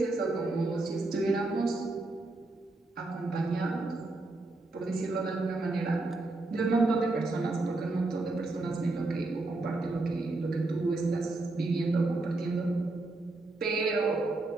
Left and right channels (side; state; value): left; quieter; 3.1 dB